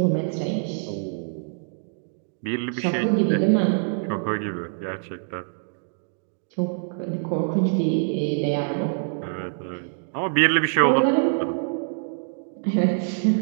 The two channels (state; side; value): silent; left; digital silence